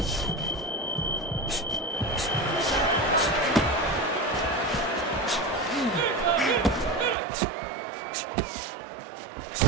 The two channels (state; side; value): drops out; left; at 7.2 s